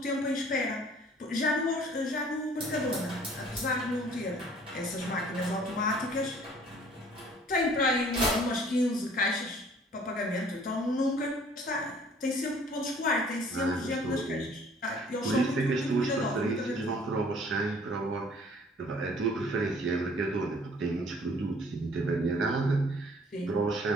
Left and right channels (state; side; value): normal; both; correlation 0.55